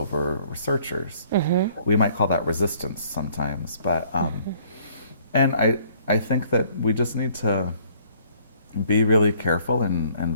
researchers. We might call that resistance sometimes, but and I think that we just need to be really careful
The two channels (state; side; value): inverted; both; correlation -0.60